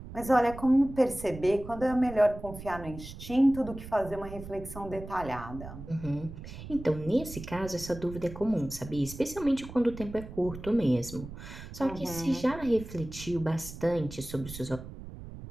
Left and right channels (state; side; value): noise; right; rumble, 12 dB below the sound